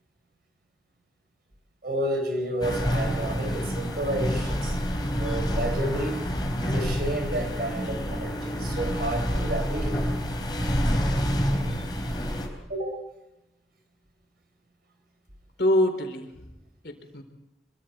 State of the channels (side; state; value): both; normal; correlation 0.70